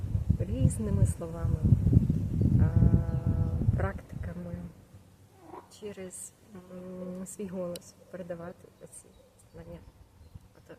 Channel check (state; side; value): identical; both; correlation 1.00